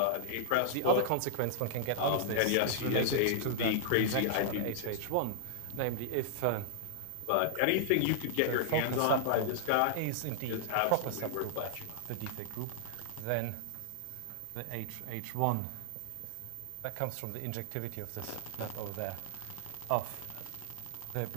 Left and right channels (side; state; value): both; different; correlation -0.01